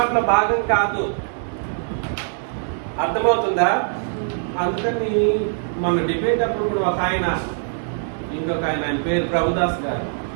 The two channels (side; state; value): left; silent; digital silence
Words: భాగం కాదు. అర్థమవుతుందా? అందుకని మన డిబేట్ అప్పుడు కూడా ఒక ఆయన, ఇంకొక ఆయన పేరు ప్రభుదాస్ గారు,